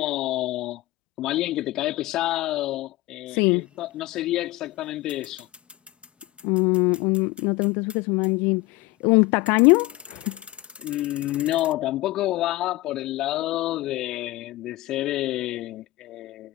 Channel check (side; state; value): right; quieter; 18.9 dB